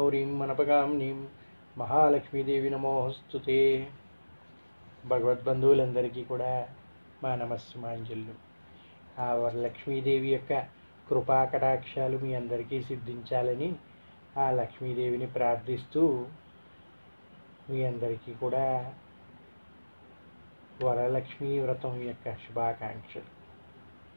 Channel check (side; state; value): both; inverted; correlation -1.00